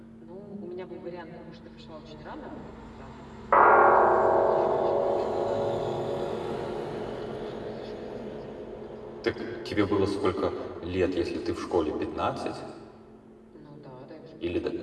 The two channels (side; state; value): both; identical; correlation 1.00